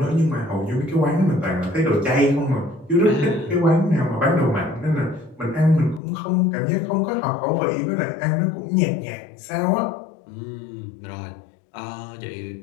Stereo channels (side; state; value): right; drops out; at 6.0 s